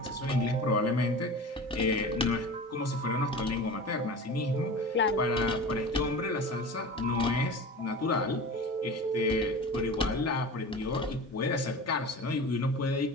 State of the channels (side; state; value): both; normal; correlation 0.34